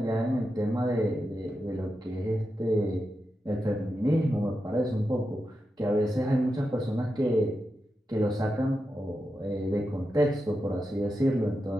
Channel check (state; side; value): normal; both; correlation 0.89